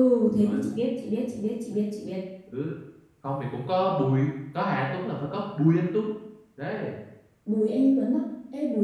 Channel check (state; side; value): identical; both; correlation 1.00